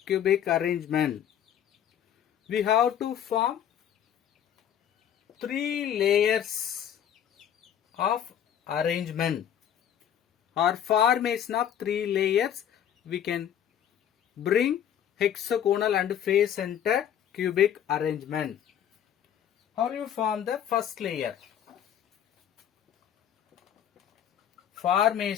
cubic arrangement? We have to form 3 layers of arrangement or formation of 3 layers. We can bring hexagonal and face center cubic arrangement. How you form the first layer?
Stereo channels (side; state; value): right; quieter; 9.6 dB